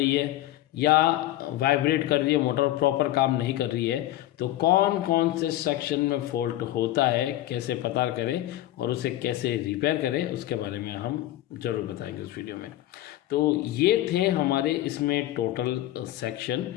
है, या वाइब्रेट कर रही है मोटर, प्रॉपर काम नहीं कर रही है, तो कौन कौन से सेक्शन में फॉल्ट होता है, कैसे पता करें और उसे कैसे रिपेयर करें, उसके बारे में हम ज़रूर बताएंगे उस वीडियो में। तो ये थे हमारे इसमें टोटल सेक्शन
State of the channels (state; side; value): quieter; right; 14.8 dB